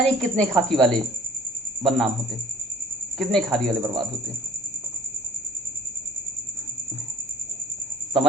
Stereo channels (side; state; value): both; normal; correlation 0.54